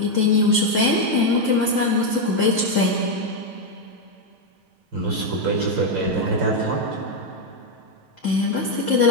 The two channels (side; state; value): left; late; 5.0 ms